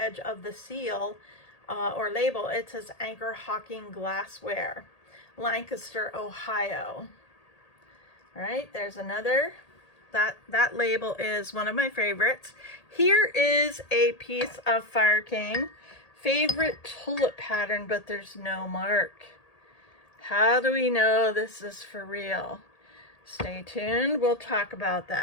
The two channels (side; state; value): right; late; 1.8 ms